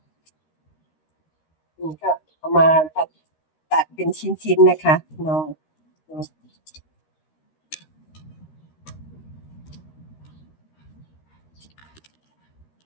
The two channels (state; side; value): late; right; 13 ms